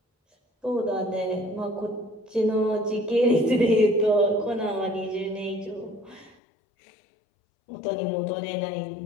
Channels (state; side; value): drops out; right; at 6.4 s